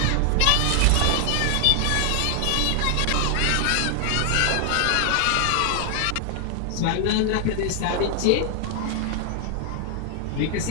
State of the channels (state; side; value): different; both; correlation 0.00